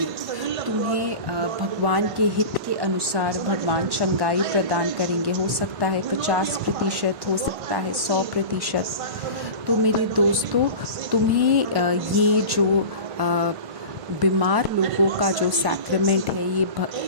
तुम्हें भगवान के हित के अनुसार भगवान चंगाई प्रदान करेंगे। हो सकता है 50%, हो सकता है 100%। तो मेरे दोस्तों, तुम्हें ये जो बीमार लोगों का जो सैक्रेमेंट है, ये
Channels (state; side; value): late; left; 1.5 ms